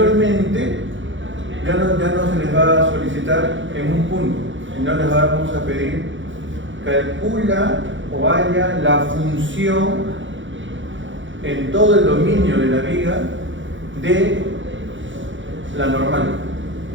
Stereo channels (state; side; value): late; left; 0.55 ms